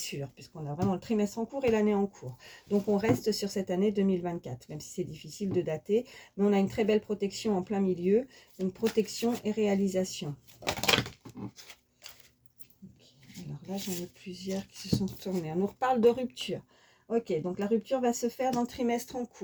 puisqu'on a vraiment le trimestre en cours et l'année en cours. Donc, on reste sur cette année 2024, même si c'est difficile de dater. Mais on a une très belle protection en plein milieu, donc protection et réalisation. Okay. Alors là, j'en ai plusieurs qui se sont tournés. On nous reparle de rupture. Ok, donc la rupture va se faire dans le trimestre en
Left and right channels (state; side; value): identical; both; correlation 1.00